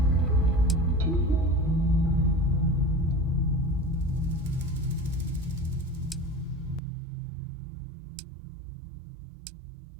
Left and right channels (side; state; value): left; drops out; at 6.8 s